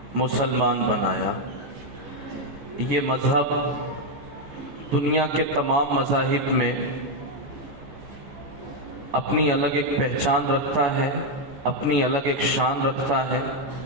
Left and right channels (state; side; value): late; left; 14 ms